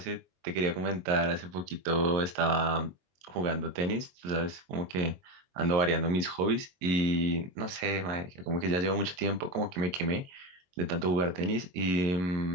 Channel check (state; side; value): late; left; 22 ms